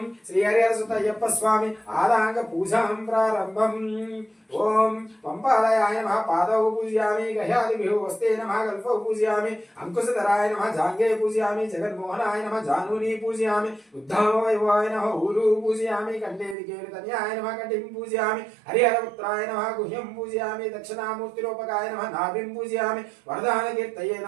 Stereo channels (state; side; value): drops out; left; at 16.6 s